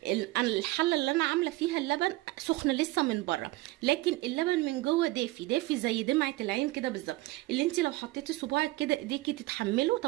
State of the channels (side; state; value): left; quieter; 19.4 dB